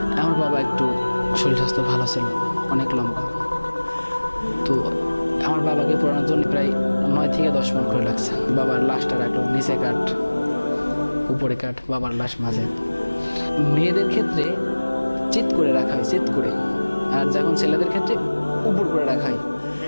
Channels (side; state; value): both; inverted; correlation -1.00